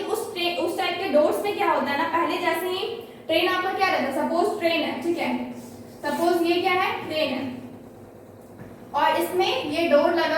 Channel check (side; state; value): both; identical; correlation 1.00